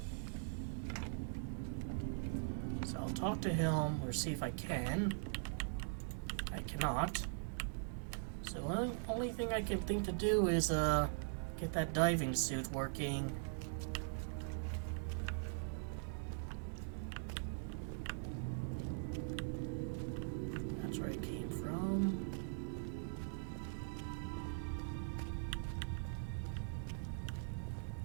I'll talk to him or see if I can. I cannot. So the only thing I can think to do is get that diving suit working. That's where it came from.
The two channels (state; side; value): silent; left; digital silence